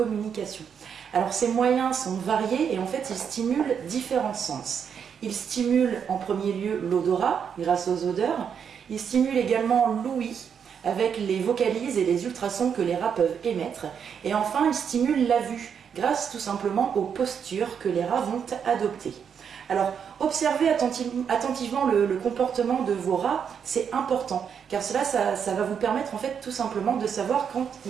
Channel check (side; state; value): left; quieter; 7.4 dB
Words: Alors ces moyens sont variés et en fait ils stimulent différents sens. Ils stimulent en premier lieu l'odorat grâce aux odeurs. Ils stimulent également l'ouïe avec les vocalises et les ultrasons que les rats peuvent émettre. Et enfin ils stimulent la vue grâce tout simplement aux postures que les rats vont adopter. Alors, observez attentivement le comportement de vos rats, c'est important, car cela, ça va vous permettre en fait tout simplement de savoir quand